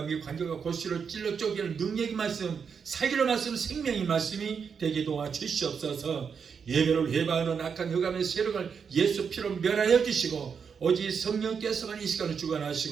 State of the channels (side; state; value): left; quieter; 6.4 dB